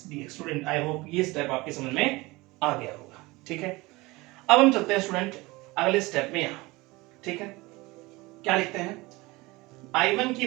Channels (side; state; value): left; quieter; 22.1 dB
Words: dx। Student I hope ये स्टेप आपके समझ में आ गया होगा, ठीक है। अब हम चलते हैं स्टूडेंट अगले स्टेप में यहाँ, ठीक है, क्या लिखते हैं, I1 की